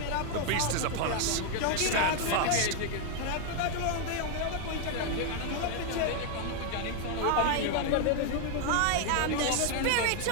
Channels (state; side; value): different; both; correlation 0.00